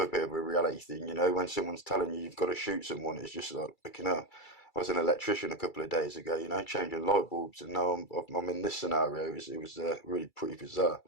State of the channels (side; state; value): right; late; 2.3 ms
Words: bit of a reality thing, when someone's telling you you've got to shoot someone, it's just like, I was an electrician a couple of days ago, changing light bulbs, and now I'm in this scenario. It was really pretty bizarre.